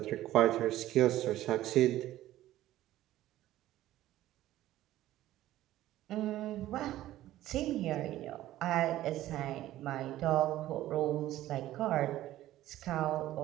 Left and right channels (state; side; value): quieter; left; 14.5 dB